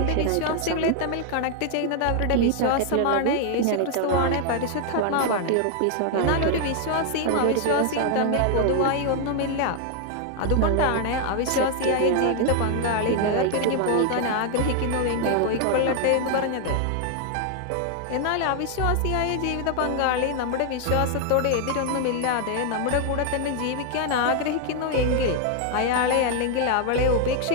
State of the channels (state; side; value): different; both; correlation 0.00